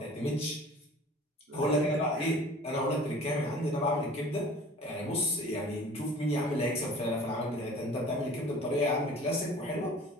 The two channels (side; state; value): both; normal; correlation 0.45